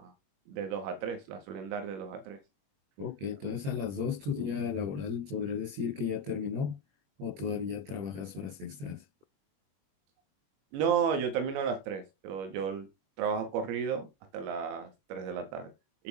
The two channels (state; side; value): late; left; 21 ms